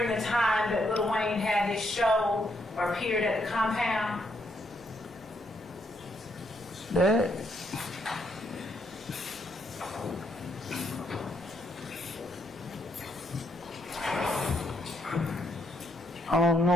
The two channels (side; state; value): both; normal; correlation 0.75